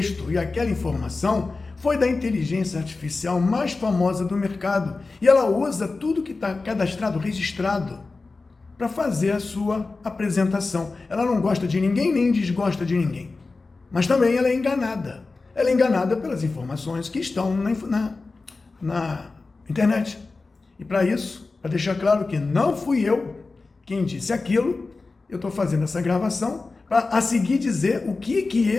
e aquela informação foi da inteligência artificial mais famosa do mercado. E ela usa tudo que está cadastrado, registrado, para fazer a sua apresentação. Ela não gosta de ninguém, nem desgosta de ninguém. Mas também ela é enganada. Ela é enganada pelas informações que estão na internet. E para isso, para deixar claro que não fui eu quem disse aquilo, eu estou fazendo essa gravação para a seguir dizer o que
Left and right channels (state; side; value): quieter; right; 3.8 dB